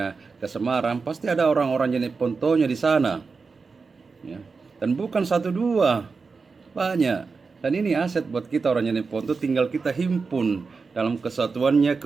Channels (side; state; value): left; quieter; 4.6 dB